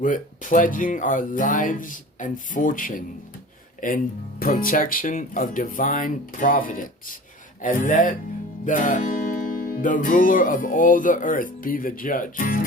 pledging our lives and fortune in protection of divine providence. And let the ruler of all the earth be the judge.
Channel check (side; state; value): both; normal; correlation 0.40